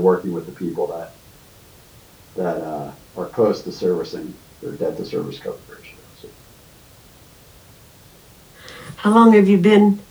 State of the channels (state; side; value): identical; both; correlation 1.00